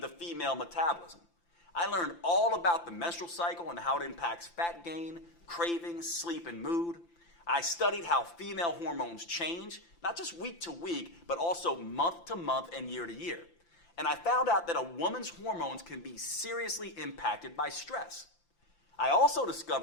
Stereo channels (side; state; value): right; late; 5.9 ms